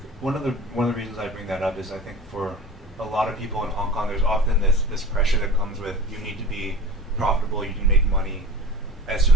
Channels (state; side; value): normal; both; correlation 0.39